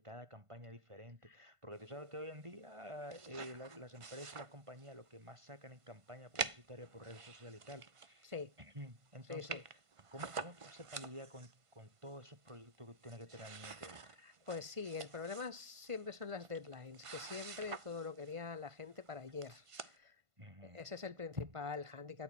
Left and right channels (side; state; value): left; late; 1.5 ms